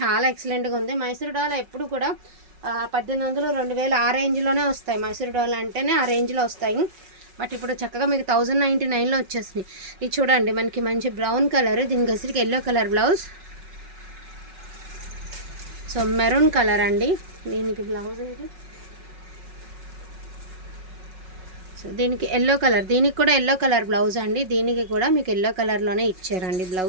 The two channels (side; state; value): left; late; 5.4 ms